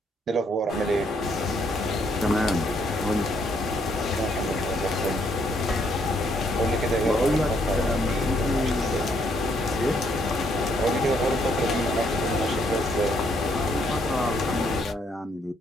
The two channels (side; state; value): both; normal; correlation 0.71